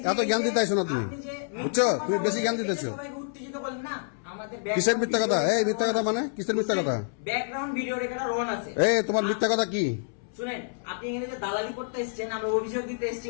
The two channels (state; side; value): silent; right; 60 dB below the other